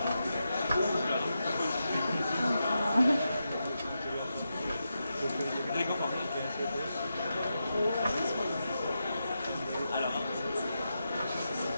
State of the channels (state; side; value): inverted; both; correlation -0.87